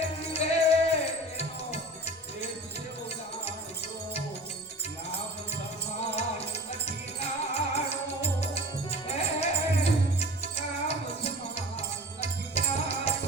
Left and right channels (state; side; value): normal; both; correlation 0.39